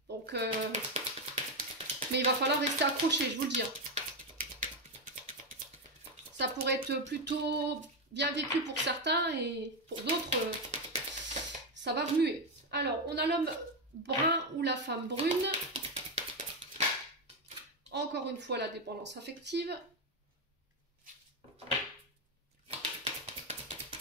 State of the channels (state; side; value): normal; both; correlation 0.08